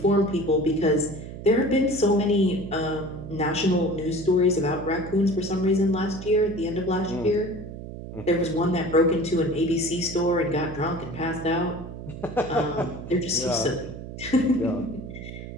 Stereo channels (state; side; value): noise; right; hum, 11 dB below the sound